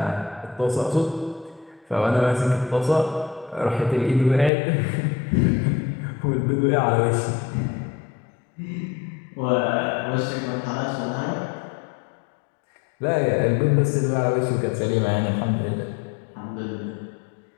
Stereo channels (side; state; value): right; drops out; at 4.5 s